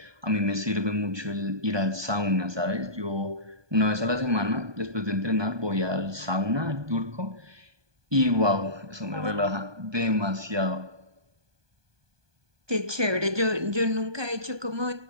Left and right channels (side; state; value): left; late; 1.2 ms